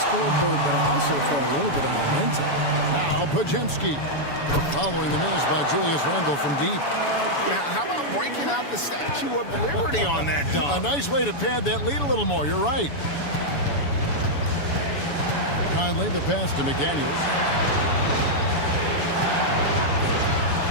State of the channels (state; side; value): late; right; 7.0 ms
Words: but also for a little bit of momentum. Now Podziemski, following the miss by Julius Randle from deep. Now, how about breaking out the Statue of Liberty on that dunk? A nice way to pad that lead a little more. You're right. Conley, the pass to McDaniels.